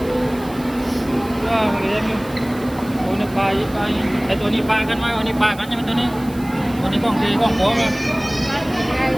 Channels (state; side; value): noise; right; hiss, 20 dB below the sound